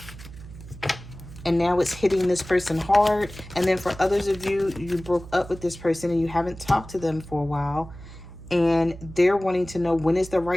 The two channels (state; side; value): noise; right; hum, 15 dB below the sound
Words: And now it's hitting this person hard. And then for others of you, you broke up with this person and you haven't talked to them for a while. And they're wanting to know when is the